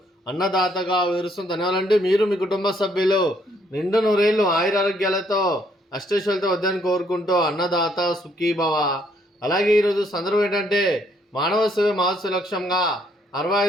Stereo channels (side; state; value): both; normal; correlation 0.69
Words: అన్నదాతగా వివరిస్తుంది. ధన్యవాదాలండి. మీరు మీ కుటుంబ సభ్యులు నిండు నూరేళ్లు ఆయురారోగ్యాలతో అష్టైశ్వర్యాలతో వద్దని కోరుకుంటూ అన్నదాత సుఖీభవ. అలాగే ఈరోజు సందర్భం ఏంటంటే మానవ సేవ మహోత్సవ లక్ష్యంగా